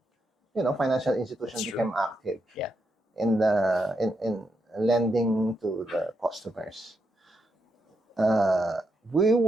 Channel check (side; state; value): both; normal; correlation 0.82